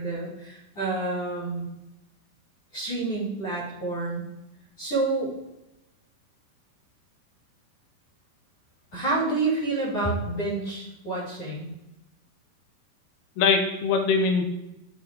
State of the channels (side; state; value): right; late; 9.8 ms